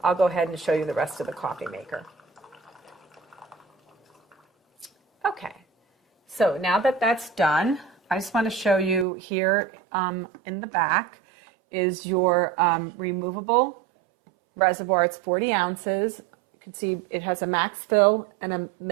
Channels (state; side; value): drops out; left; at 9.1 s